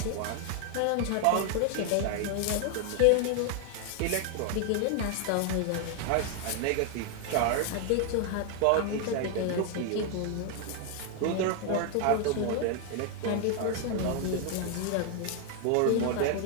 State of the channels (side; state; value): both; different; correlation 0.00